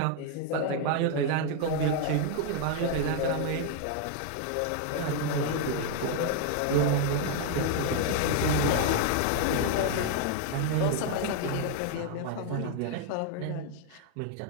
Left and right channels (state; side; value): different; both; correlation 0.00